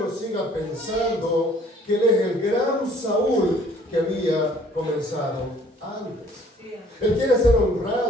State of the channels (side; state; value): both; normal; correlation 0.57